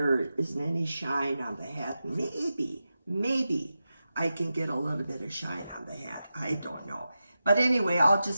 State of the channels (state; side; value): inverted; both; correlation -0.91